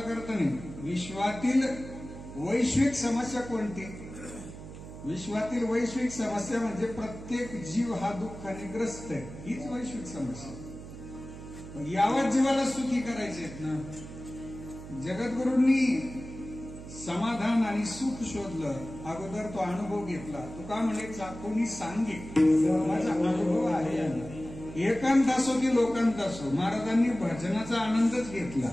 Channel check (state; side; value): noise; right; hum, 13 dB below the sound